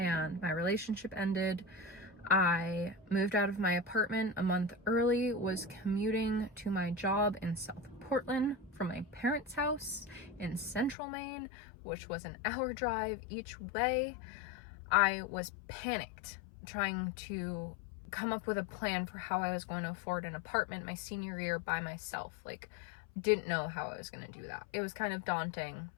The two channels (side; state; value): right; drops out; at 11.0 s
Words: my relationship ended. I moved out of my apartment a month early, was commuting to my job in South Portland from my parents' house in Central Maine, which was an hour drive each way. I was panicked trying to come up with a plan for how I was going to afford an apartment my senior year by myself. Like, didn't know how I was going to do that. It was kind of daunting